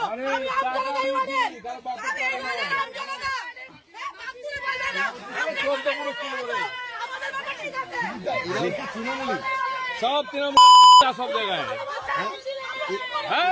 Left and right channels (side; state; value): both; identical; correlation 1.00